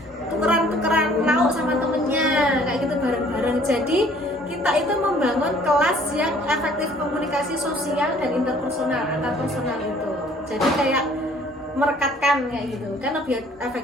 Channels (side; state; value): both; normal; correlation 0.57